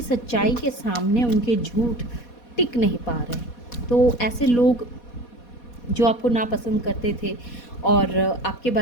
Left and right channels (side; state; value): right; late; 4.2 ms